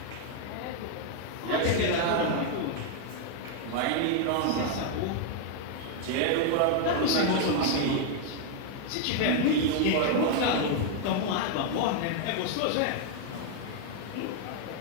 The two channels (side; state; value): both; different; correlation 0.00